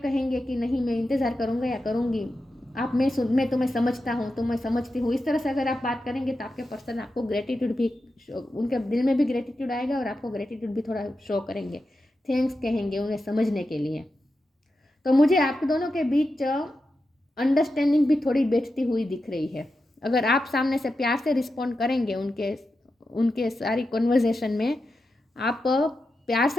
कि नहीं मैं इंतज़ार करूँगा या करूँगी, आप मैं तुम्हें समझता हूँ, तुम्हें समझती हूँ, इस तरह से अगर आप बात करेंगे तो आपके पर्सन आपको ग्रेटिट्यूड भी, उनके दिल में भी ग्रेटिट्यूड आएगा और आपको ग्रेटिट्यूड भी थोड़ा शो करेंगे, थैंक्स कहेंगे उन्हें समझने के लिए। तो मुझे आप दोनों के बीच अंडरस्टैंडिंग भी थोड़ी बैठती हुई दिख रही है। अगर आप सामने से प्यार से रिस्पॉन्ड करेंगे उनके उनके सारी कन्वर्जेशन में, आप प्यार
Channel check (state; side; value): normal; both; correlation 0.90